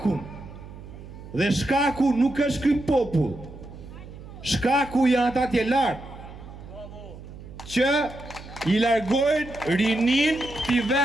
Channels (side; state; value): right; noise; hum, 15 dB below the sound